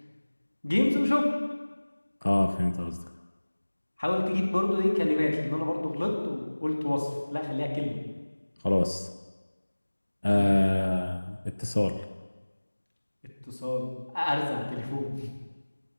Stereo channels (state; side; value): inverted; both; correlation -1.00